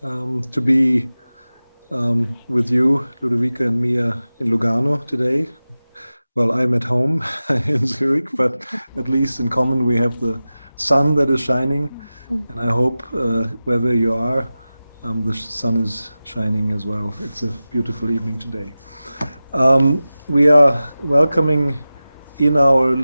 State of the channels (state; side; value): inverted; both; correlation -0.95